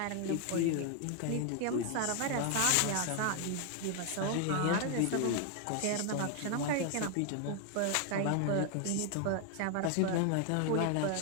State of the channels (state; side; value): different; both; correlation 0.00